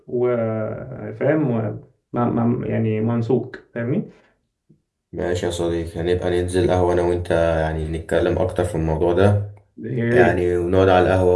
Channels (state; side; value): identical; both; correlation 1.00